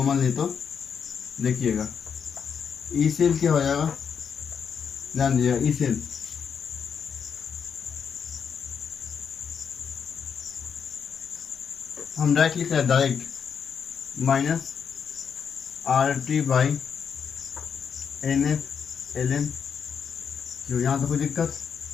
ले तो देखिएगा, ई सेल क्या हो जाएगा, ध्यान दीजिएगा, ई सेल हम डायरेक्ट लिख रहे हैं, direct minus R T by N F L N Q. यहाँ तो कोई दिक्कत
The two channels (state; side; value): quieter; right; 6.9 dB